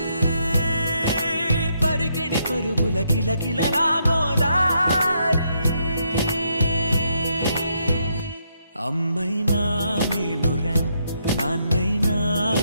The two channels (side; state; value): both; inverted; correlation -0.76